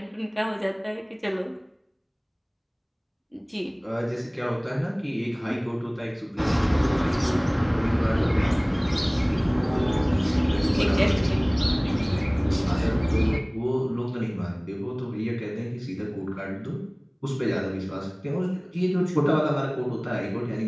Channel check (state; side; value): identical; both; correlation 1.00